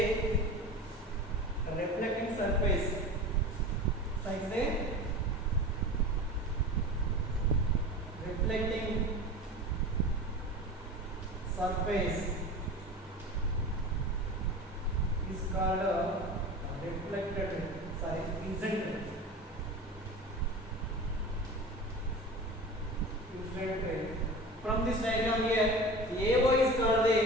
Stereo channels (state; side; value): normal; both; correlation 0.33